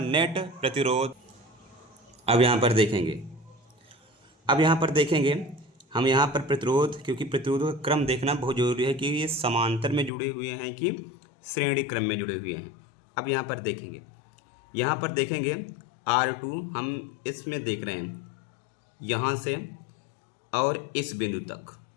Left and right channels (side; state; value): right; drops out; at 10.1 s